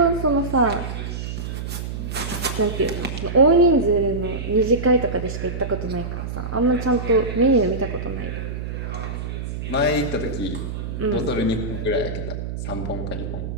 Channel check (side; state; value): right; noise; hum, 6 dB below the sound